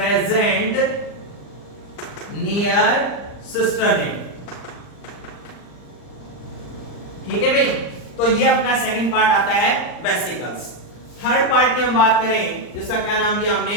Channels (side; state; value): right; late; 39 ms